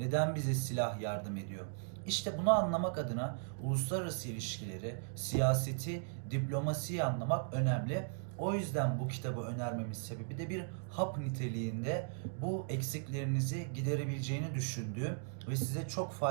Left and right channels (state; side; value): silent; left; digital silence